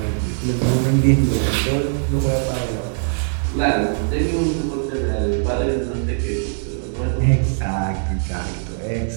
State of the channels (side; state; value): left; silent; digital silence